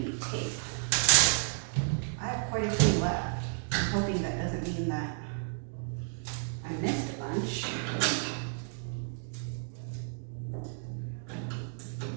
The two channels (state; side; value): silent; left; digital silence